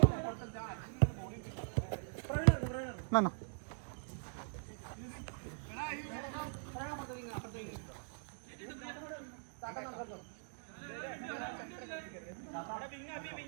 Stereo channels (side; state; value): left; silent; digital silence